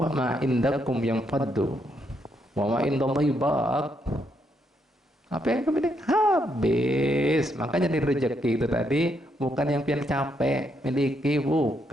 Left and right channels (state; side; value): normal; both; correlation 0.76